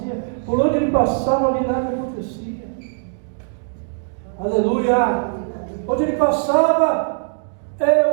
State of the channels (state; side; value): silent; left; digital silence